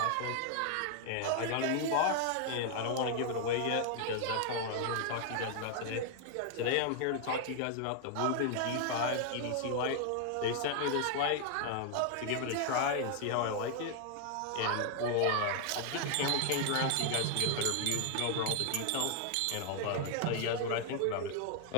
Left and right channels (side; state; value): both; different; correlation 0.00